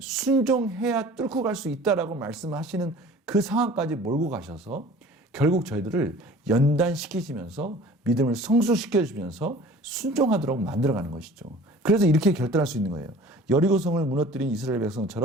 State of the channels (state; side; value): normal; both; correlation 0.46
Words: 순종해야 뚫고 갈 수 있다라고 말씀하시는 그 상황까지 몰고 가셔서 결국 저희들을 연단시키시면서 믿음을 성숙시켜주면서 순종하도록 만들어가는 것이죠. 그래서 이렇게 결단할 수 있는 거예요. 여리고성을 무너뜨린 이스라엘